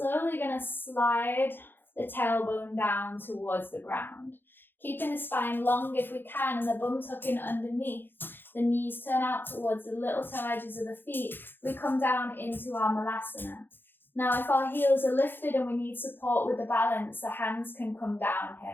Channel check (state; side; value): late; right; 0.099 ms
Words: going to slide the tailbone down towards the ground. Keeping the spine long if we can and the bum tucking underneath. The knees turn out towards the little toe edges of the feet. We come down into our Malasana. Now, if our heels are lifted and we need support with the balance, the hands can come down